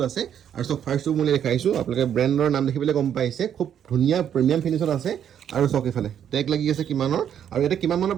আছে আৰু চব ফাৰ্ষ্টটো মই দেখাইছোঁ আপোনালোকে ব্ৰেণ্ডৰ নাম দেখি পেলাই গম পাইছে খুব ধুনীয়া প্ৰিমিয়াম ফিনিছত আছে আৰু চক এইফালে টেগ লাগি আছে কিমানৰ আৰু ইয়াতে কিমান মানৰ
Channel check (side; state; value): left; quieter; 9.3 dB